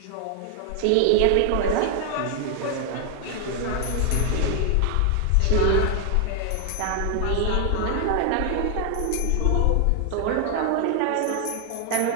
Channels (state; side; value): different; both; correlation 0.00